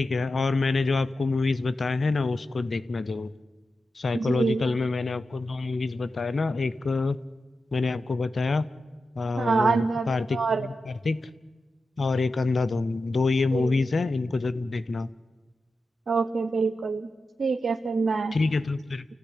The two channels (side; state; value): both; normal; correlation 0.91